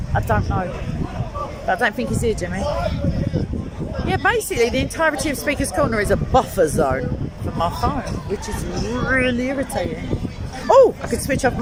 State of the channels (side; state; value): both; identical; correlation 1.00